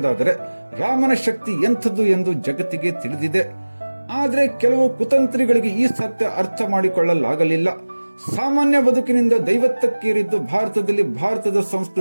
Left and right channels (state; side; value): inverted; both; correlation -1.00